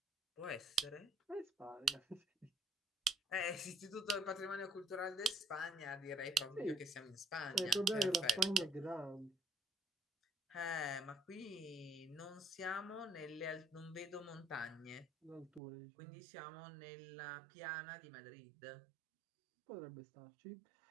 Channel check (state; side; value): drops out; left; at 15.6 s